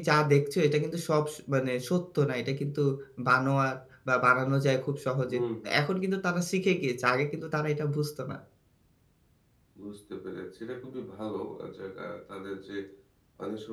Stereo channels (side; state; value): both; identical; correlation 1.00